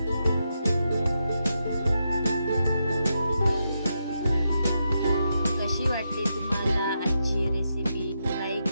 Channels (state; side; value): inverted; both; correlation -0.84